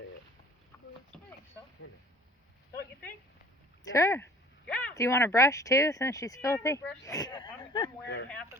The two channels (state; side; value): normal; both; correlation 0.49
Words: it. I think so. Don't you think? Sure. Yeah. Do you want to brush too, since she's Yeah, filthy? I'm wearing half